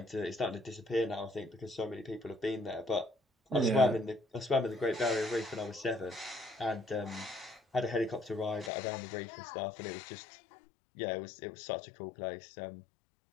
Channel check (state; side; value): drops out; right; at 8.7 s